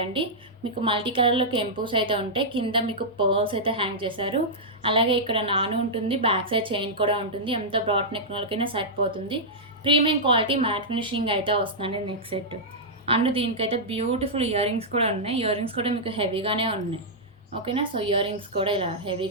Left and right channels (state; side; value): normal; both; correlation -0.10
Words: మీకు మల్టీ కలర్లో కెంపూస్ అయితే ఉంటాయి. కింద మీకు పర్ల్స్ అయితే హ్యాంగ్ చేశారు. అలాగే ఇక్కడ నాను ఉంటుంది, బ్యాక్ సైడ్ చైన్ కూడా ఉంటుంది. ఎంత బ్రాడ్ నెక్ వాళ్ళకైనా సరిపోతుంది. ప్రీమియం క్వాలిటీ మ్యాట్ ఫినిషింగ్ అయితే వస్తుందండి నెక్ సెట్. అండ్ దీనికైతే బ్యూటిఫుల్ ఇయర్ రింగ్స్ కూడా ఉన్నాయి. ఇయర్ రింగ్స్ కూడా మీకు హెవీగానే ఉన్నాయి. ఓకేనా, సో ఇయర్ రింగ్స్ కూడా ఇలా